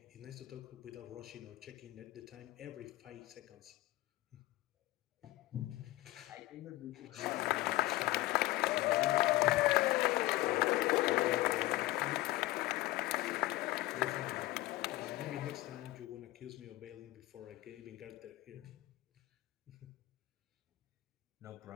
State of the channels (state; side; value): quieter; right; 18.3 dB